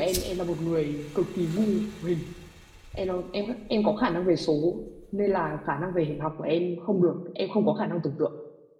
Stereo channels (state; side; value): identical; both; correlation 1.00